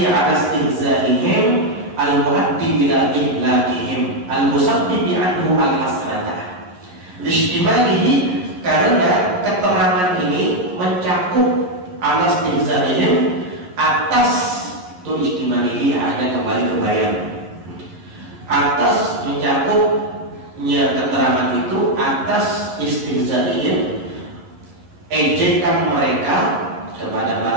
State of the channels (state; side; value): late; left; 11 ms